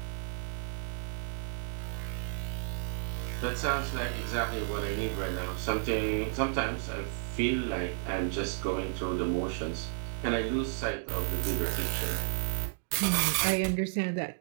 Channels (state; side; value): silent; left; digital silence